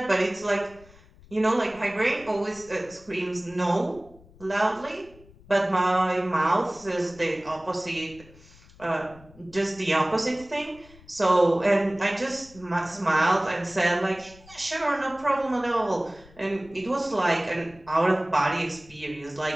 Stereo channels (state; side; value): noise; left; rumble, 24 dB below the sound